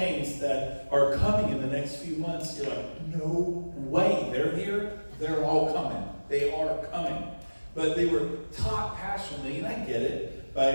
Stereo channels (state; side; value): inverted; both; correlation -1.00